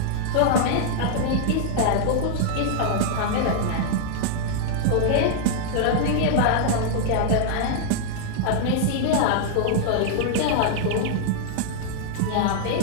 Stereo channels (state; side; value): different; both; correlation -0.01